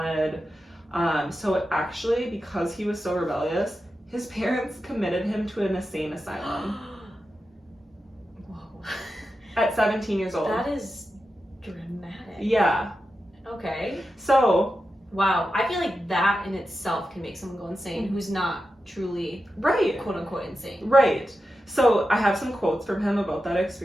So actually, because he was so rebellious, his parents committed him to an insane asylum. Whoa. At 17 years old. That is dramatic. Yeah. Okay. So... Wow. I feel like that in itself can make someone go insane who's not truly, right, quote unquote, insane. Right. So I have some quotes from him about that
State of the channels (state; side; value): normal; both; correlation 0.90